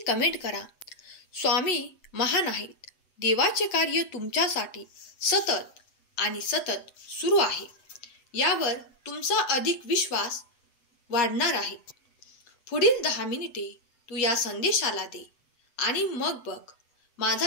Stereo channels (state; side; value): late; right; 8.0 ms